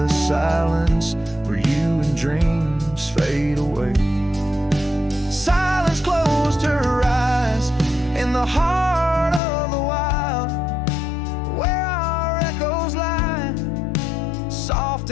silence where you and dreams fade away. Silence closed her eyes in the heart of the wild, where our echoes lie, soft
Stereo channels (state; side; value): drops out; right; at 9.4 s